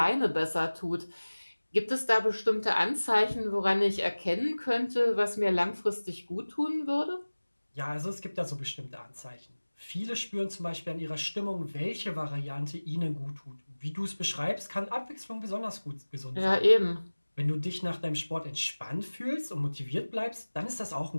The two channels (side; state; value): both; inverted; correlation -1.00